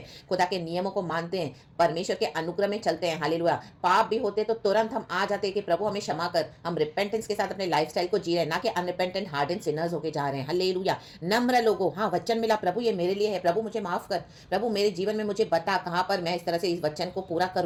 खुदा के नियमों को मानते हैं, परमेश्वर के अनुग्रह में चलते हैं। हालेलुया। पाप भी होते तो तुरंत हम आ जाते हैं कि प्रभु हमें क्षमा कर, हम रिपेंटेंस के साथ अपने लाइफस्टाइल को जी रहे हैं, ना कि अनरिपेंटेंट हार्डेंड सिनर्स होके जा रहे हैं। हालेलुया। नम्र लोगों, हाँ वचन मिला, प्रभु ये मेरे लिए है, प्रभु मुझे माफ कर, प्रभु मेरे जीवन में मुझे बता कहाँ पर मैं इस तरह से इस वचन को पूरा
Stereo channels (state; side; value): identical; both; correlation 1.00